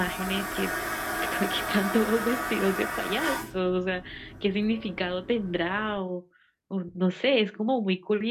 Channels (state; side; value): identical; both; correlation 1.00